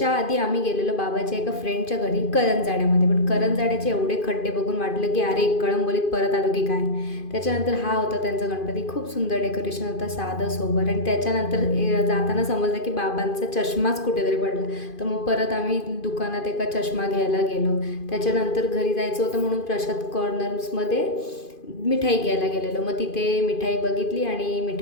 आधी आम्ही गेलेलो बाबाच्या एका फ्रेंडच्या घरी करंजाड्यामध्ये. पण करंजाड्याचे एवढे खड्डे बघून वाटलं की अरे कळंबोलीत परत आलो की काय. त्याच्यानंतर हा होता त्यांचा गणपती. खूप सुंदर डेकोरेशन होता, साधं सोबर. आणि त्याच्यानंतर जाताना समजलं की बाबांचा चष्माच कुठेतरी पडला. तर मग परत आम्ही दुकानात एका चष्मा घ्यायला गेलो. त्याच्यानंतर घरी जायचं होतं म्हणून प्रसाद कॉर्नर्समध्ये मिठाई घ्यायला गेलेलो. मग तिथे मिठाई बघितली आणि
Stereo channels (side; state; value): right; late; 2.5 ms